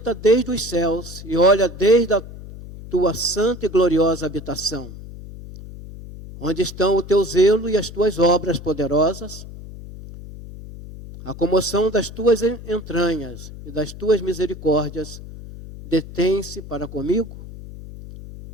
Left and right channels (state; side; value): noise; left; hum, 14 dB below the sound